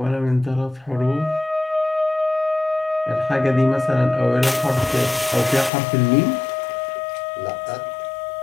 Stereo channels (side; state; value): right; drops out; at 5.7 s